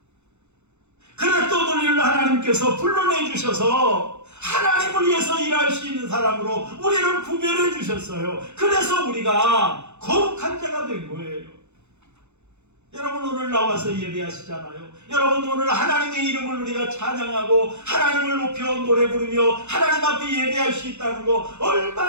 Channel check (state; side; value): late; left; 0.82 ms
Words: 그랬던 우리를 하나님께서 불러내 주셔서 하나님을 위해서 일할 수 있는 사람으로 우리를 구별해 주셨어요. 그래서 우리가 거룩한 자가 된 거예요. 여러분, 오늘 나와서 예배하시잖아요. 여러분, 오늘 하나님의 이름을 우리가 찬양하고 하나님을 높여 노래 부르며 하나님 앞에 예배할 수 있다는 거